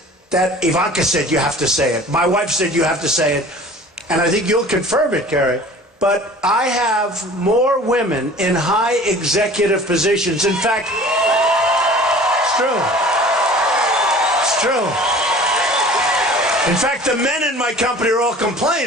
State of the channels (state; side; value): normal; both; correlation 0.44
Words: that Ivanka said you have to say it. My wife said you have to say it. And I think you'll confirm it, Carrie. But I have more women in high executive positions. In fact, it's true. It's true. In fact, the men in my company are all